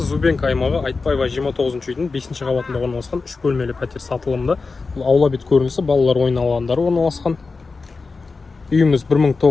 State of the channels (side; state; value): right; quieter; 4.2 dB